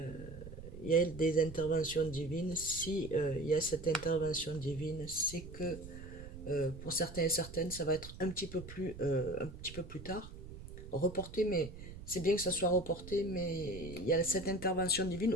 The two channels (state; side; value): noise; right; rumble, 13 dB below the sound